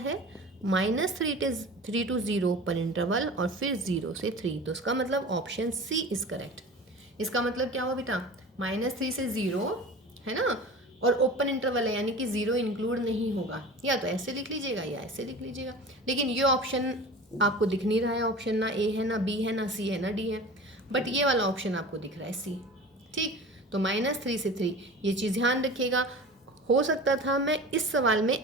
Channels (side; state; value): both; normal; correlation 0.36